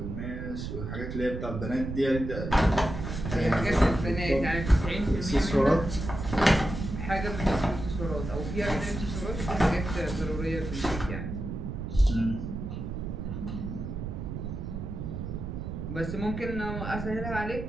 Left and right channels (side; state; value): right; noise; rumble, 6 dB below the sound